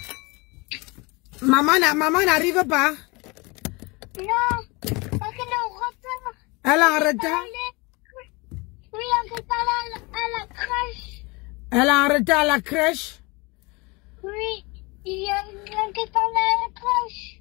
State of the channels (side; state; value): right; quieter; 26.5 dB